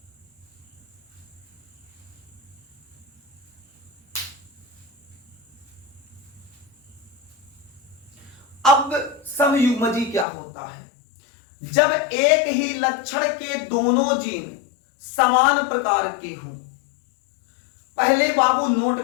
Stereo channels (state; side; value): drops out; right; at 10.2 s